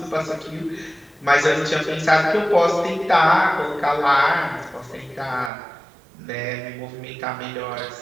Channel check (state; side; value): drops out; left; at 5.5 s